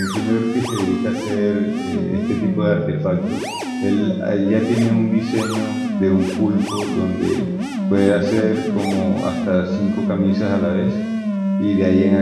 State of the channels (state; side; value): identical; both; correlation 1.00